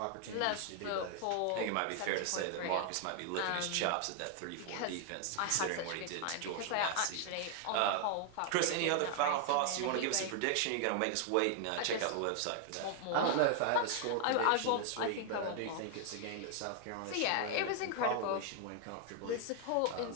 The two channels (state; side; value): different; both; correlation 0.00